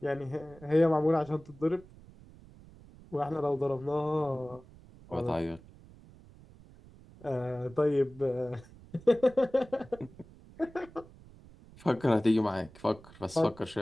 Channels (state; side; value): noise; right; rumble, 22 dB below the sound